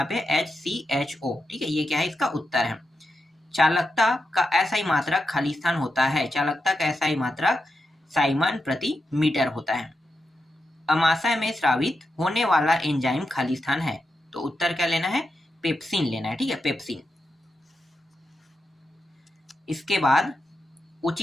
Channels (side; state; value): both; normal; correlation 0.87